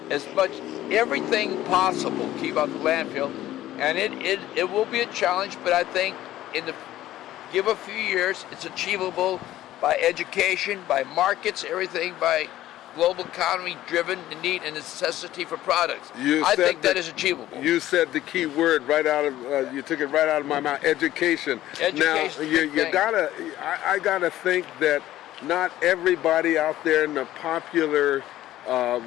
as much everything possible, keep out the landfill, and it will be a challenge. But I think give a few years, it's achievable by education, by markets, everything, by global economy driven, the need and necessity for products. I think that is achievable. You said the key word right out of you took it right out of my mouth. Education. Now I gotta think that not everybody out there in the popular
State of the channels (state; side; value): quieter; right; 14.2 dB